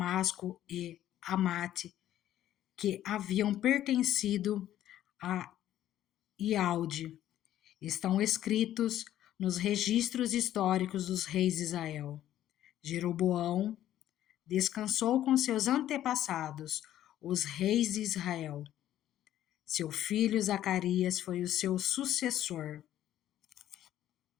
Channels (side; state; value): right; quieter; 12.3 dB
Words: e Amate, que haviam pertencido a Ialde, estão escritos nos registros históricos dos reis de Israel. Jeroboão descansou com seus antepassados, os reis de Israel. Seu filho Zacarias foi o seu sucessor.